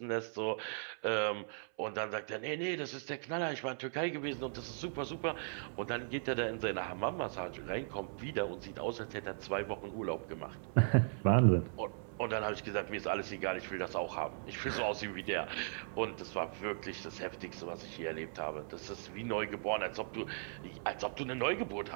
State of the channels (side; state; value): left; silent; 52 dB below the other